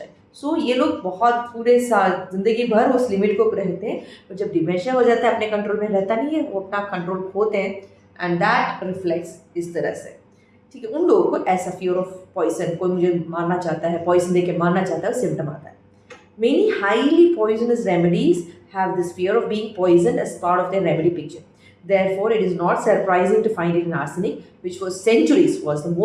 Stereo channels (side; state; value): both; identical; correlation 1.00